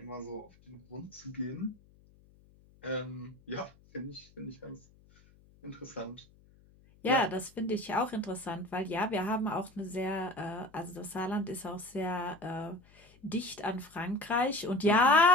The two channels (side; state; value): left; noise; hum, 28 dB below the sound